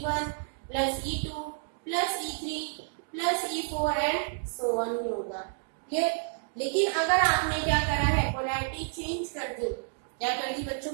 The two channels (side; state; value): left; silent; digital silence